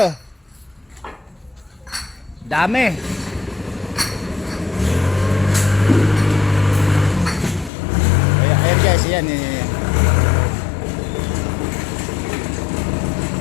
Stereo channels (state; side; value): drops out; right; at 7.7 s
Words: oh. Dami. Ayan guys, yan.